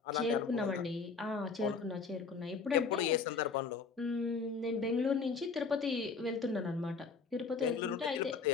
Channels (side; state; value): right; quieter; 4.9 dB